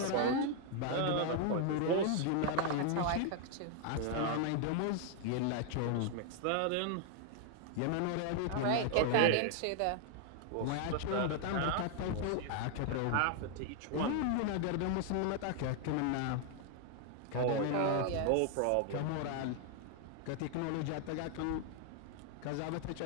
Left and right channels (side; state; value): both; different; correlation 0.00